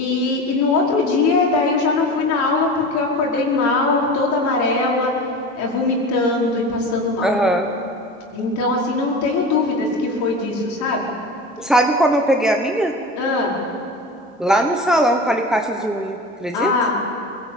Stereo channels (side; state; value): both; normal; correlation 0.32